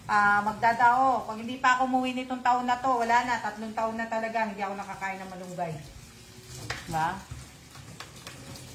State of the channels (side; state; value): both; identical; correlation 1.00